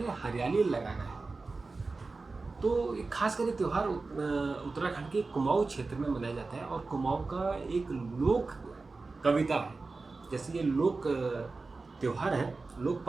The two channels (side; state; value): left; quieter; 3.8 dB